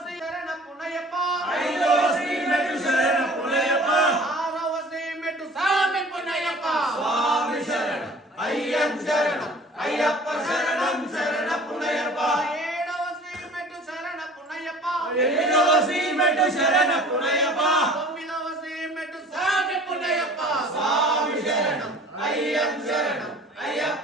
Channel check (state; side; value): normal; both; correlation 0.46